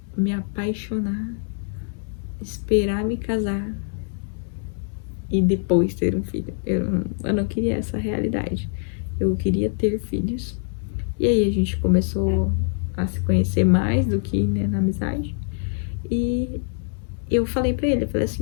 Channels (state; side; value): silent; right; 63 dB below the other